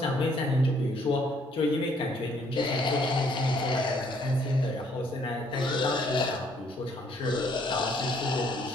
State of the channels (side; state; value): both; normal; correlation 0.65